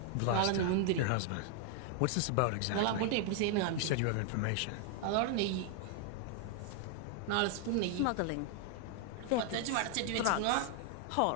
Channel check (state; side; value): different; both; correlation 0.00